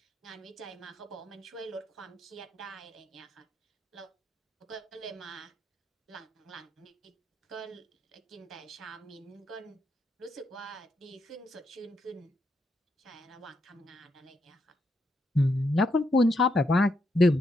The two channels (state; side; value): normal; both; correlation 0.80